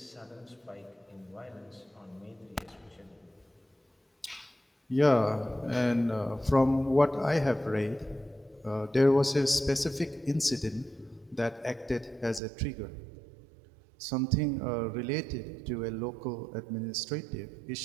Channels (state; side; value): drops out; left; at 12.4 s